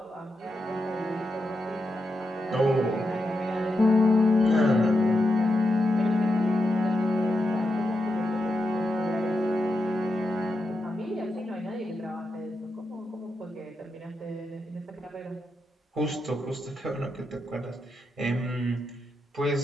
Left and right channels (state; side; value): normal; both; correlation 0.86